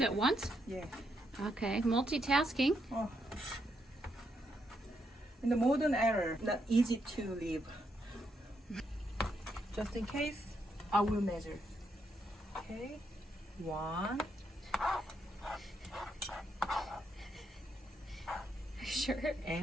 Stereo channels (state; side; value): normal; both; correlation 0.78